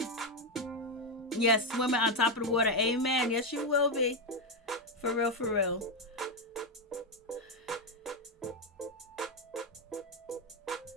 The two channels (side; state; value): both; normal; correlation 0.06